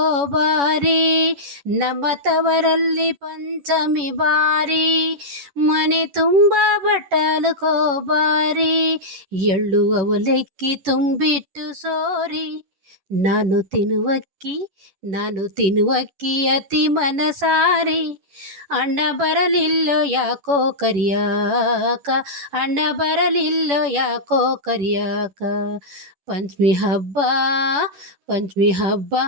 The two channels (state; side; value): late; left; 11 ms